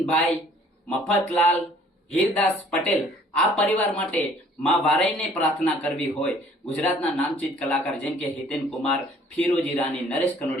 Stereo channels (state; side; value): normal; both; correlation 0.56